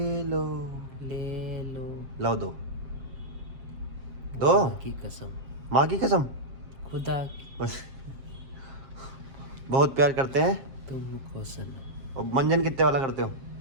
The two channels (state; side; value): late; left; 7.5 ms